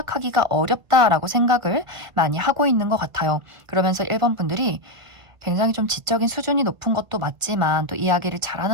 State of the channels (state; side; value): late; left; 1.3 ms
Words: 어렵다라고 생각을 많이 하고 있는 것 같아요. 그러면서 1번 분들이 굉장히 좀 지적인 수준이 높은 것도 맞지만 또 이야기를